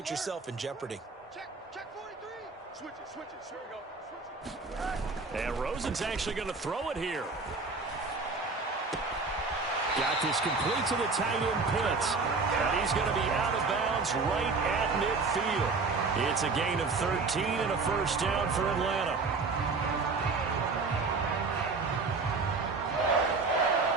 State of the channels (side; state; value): left; quieter; 4.2 dB